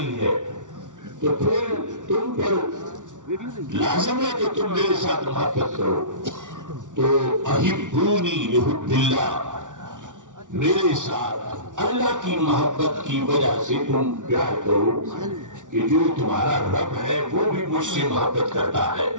ہے، تو پھر تم پر لازم ہے کہ تم میرے ساتھ محبت کرو۔ تو احبونی لحب اللہ، میرے ساتھ اللہ کی محبت کی وجہ سے تم پیار کرو کہ جو تمہارا رب ہے وہ بھی مجھ سے محبت کرتا ہے۔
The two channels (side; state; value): left; late; 0.87 ms